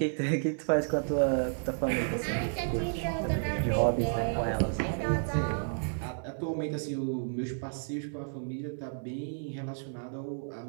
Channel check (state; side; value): silent; left; digital silence